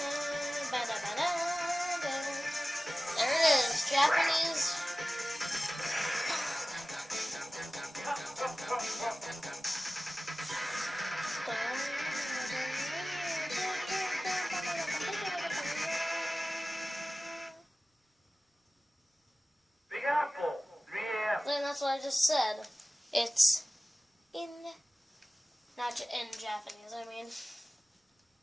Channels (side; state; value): both; normal; correlation 0.97